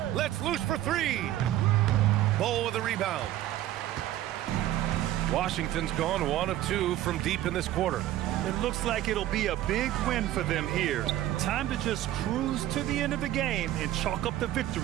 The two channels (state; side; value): quieter; left; 13.6 dB